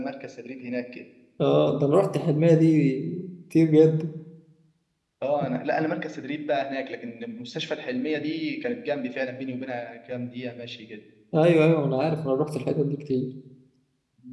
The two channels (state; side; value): identical; both; correlation 1.00